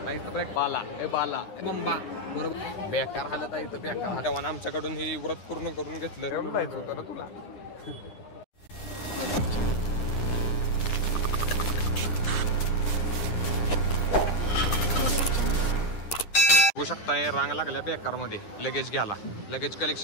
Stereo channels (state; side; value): late; right; 10 ms